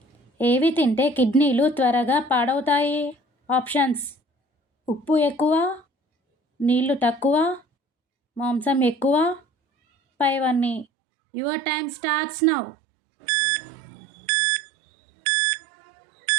ఏవి తింటే కిడ్నీలు త్వరగా పాడవుతాయి? ఆప్షన్స్: ఉప్పు ఎక్కువ, నీళ్లు తక్కువ, మాంసం ఎక్కువ, పైవన్నీ. Your time starts now.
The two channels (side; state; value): left; drops out; at 10.9 s